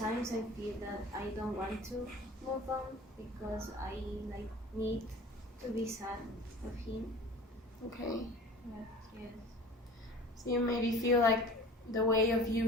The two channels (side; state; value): both; normal; correlation 0.41